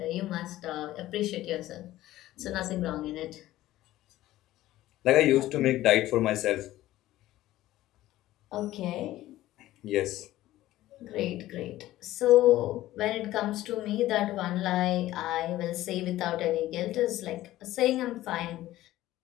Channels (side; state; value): right; quieter; 15.3 dB